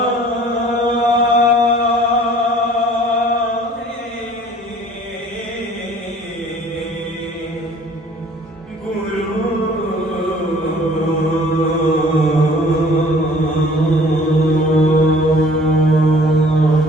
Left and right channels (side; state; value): both; normal; correlation 0.52